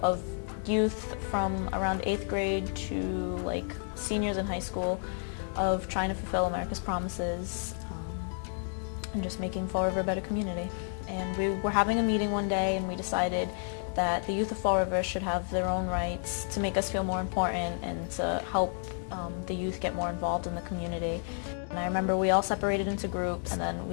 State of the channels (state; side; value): silent; right; 57 dB below the other